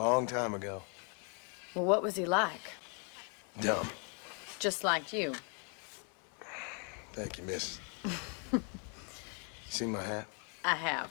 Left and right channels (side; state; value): right; quieter; 38.8 dB